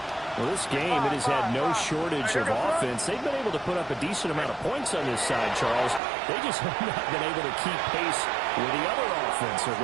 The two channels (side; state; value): left; drops out; at 6.0 s